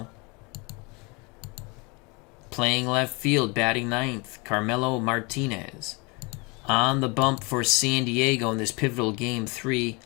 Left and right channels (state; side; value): quieter; right; 28.9 dB